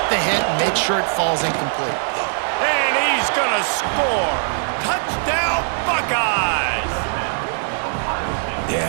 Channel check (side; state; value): left; silent; 65 dB below the other